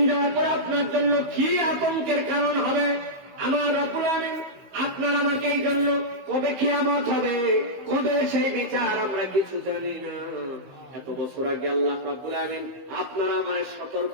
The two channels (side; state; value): left; late; 15 ms